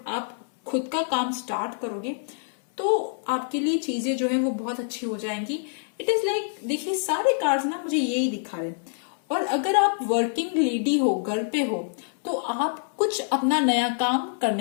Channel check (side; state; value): right; silent; 60 dB below the other